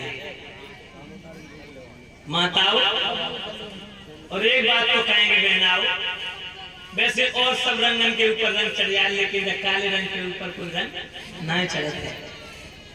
माताओं और एक बात तो कहेंगे बहनाओ, वैसे और सब रंगन के ऊपर रंग चढ़ जाए, लेकिन काले रंग के ऊपर कोई रंग नहीं चढ़ता है।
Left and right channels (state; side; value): identical; both; correlation 1.00